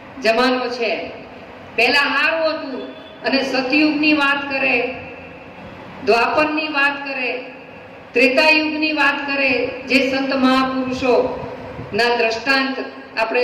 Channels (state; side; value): identical; both; correlation 1.00